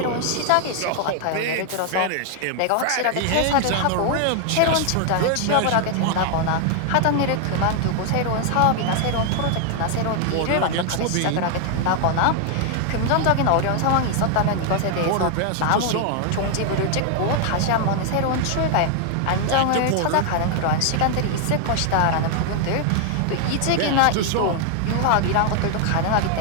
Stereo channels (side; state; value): both; different; correlation 0.00